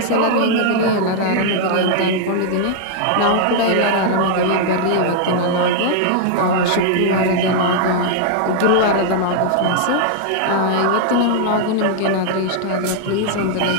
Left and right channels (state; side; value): different; both; correlation -0.01